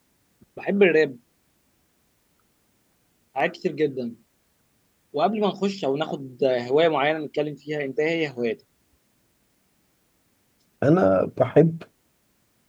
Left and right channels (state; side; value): identical; both; correlation 1.00